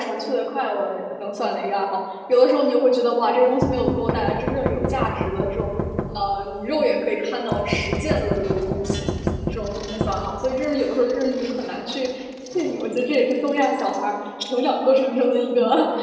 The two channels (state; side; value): identical; both; correlation 1.00